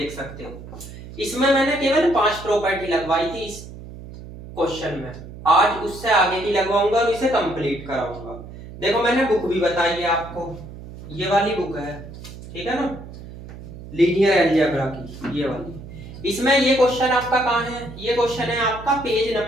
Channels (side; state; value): right; noise; hum, 14 dB below the sound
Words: सकते हो। इसमें मैंने केवल 5 प्रॉपर्टी लगवाई थी इस क्वेश्चन में। आज उससे आगे की लगवाऊंगा और इसे कंप्लीट कराऊंगा। देखो, मैंने बुक भी बताई है आपको, ये वाली बुक है, ठीक है ना, लीनियर अलजेब्रा की, ये वाली। इसमें ये क्वेश्चन आपका कहाँ है? ये क्वेश्चन है आपका पेज